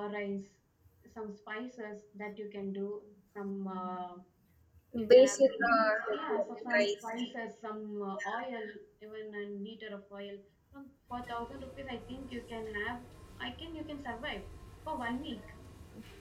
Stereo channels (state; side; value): identical; both; correlation 1.00